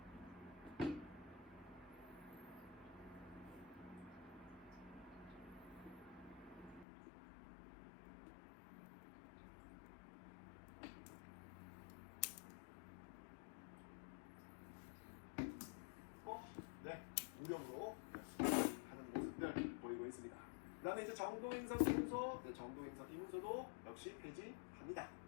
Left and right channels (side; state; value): right; drops out; at 6.9 s